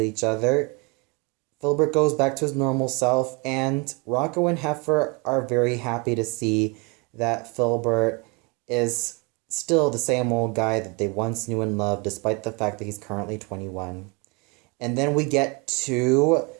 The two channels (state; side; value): quieter; left; 29.6 dB